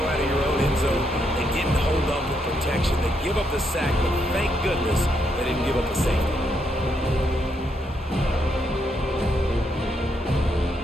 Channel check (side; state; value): both; normal; correlation 0.78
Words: out of your own end zone. They didn't hold up with protection. They give up the sack, but thank goodness they didn't give up the safety.